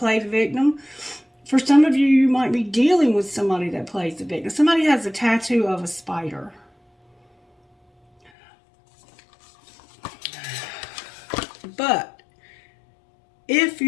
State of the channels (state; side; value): drops out; right; at 8.3 s